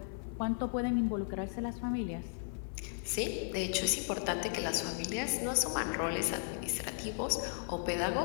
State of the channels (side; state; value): right; silent; 54 dB below the other